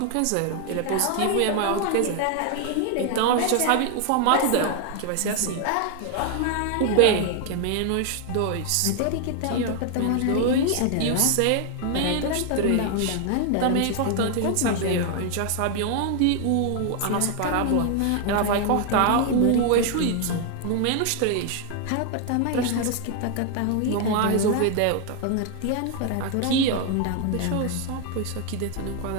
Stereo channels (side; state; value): both; different; correlation 0.00